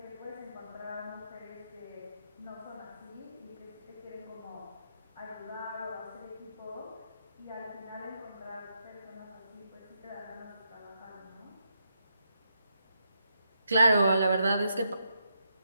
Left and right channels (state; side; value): inverted; both; correlation -0.81